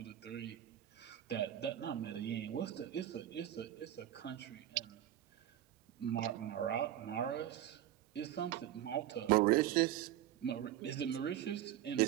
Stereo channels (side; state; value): left; quieter; 12.3 dB